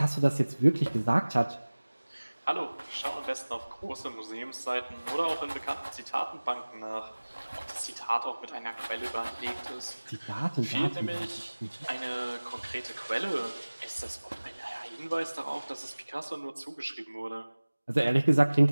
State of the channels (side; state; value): both; inverted; correlation -1.00